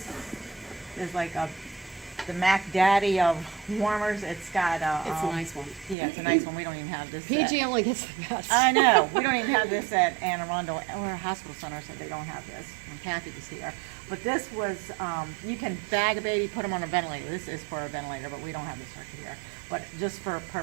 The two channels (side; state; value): left; drops out; at 6.0 s